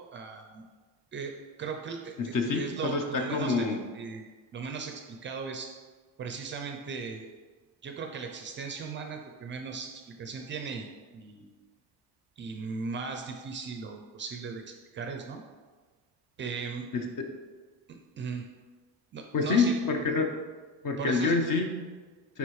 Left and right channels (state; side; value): normal; both; correlation 0.24